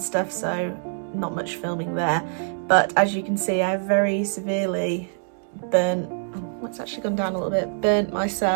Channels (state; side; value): silent; left; digital silence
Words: stuff, so not much filming there. But as you can see, I've very severely burnt. Oh, it's actually gone down a little bit. Burnt